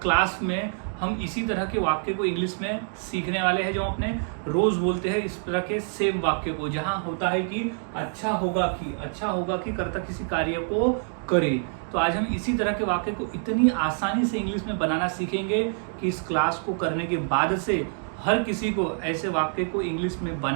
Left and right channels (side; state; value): left; silent; 60 dB below the other